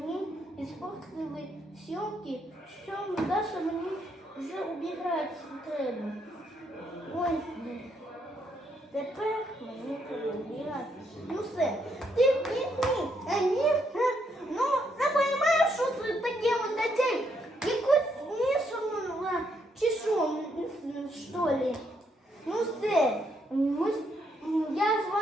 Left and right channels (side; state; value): both; normal; correlation 0.75